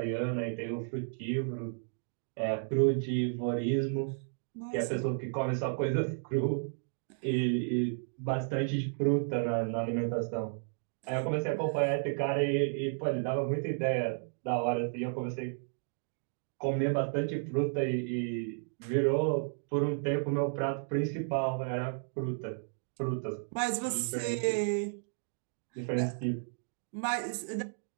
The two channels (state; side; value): silent; left; digital silence